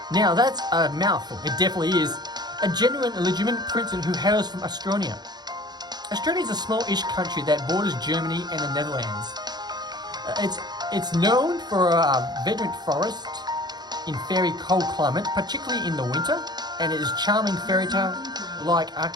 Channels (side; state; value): left; late; 0.20 ms